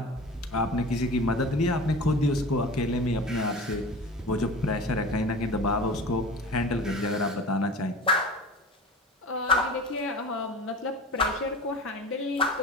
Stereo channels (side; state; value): both; normal; correlation 0.36